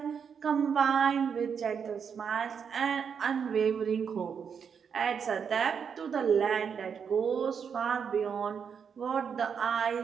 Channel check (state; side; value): quieter; left; 6.9 dB